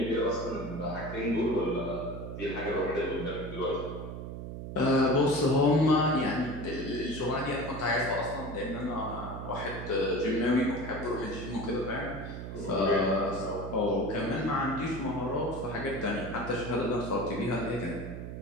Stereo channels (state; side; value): noise; right; hum, 8 dB below the sound